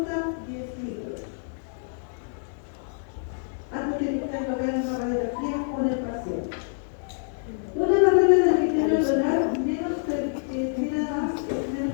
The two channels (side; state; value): right; silent; digital silence